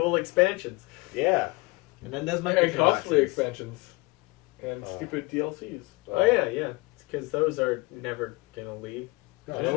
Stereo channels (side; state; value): right; quieter; 24.9 dB